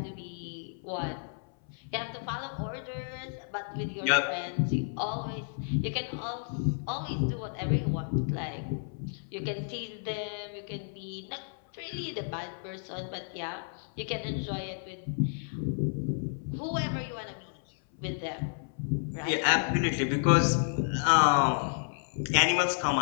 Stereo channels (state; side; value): silent; right; 57 dB below the other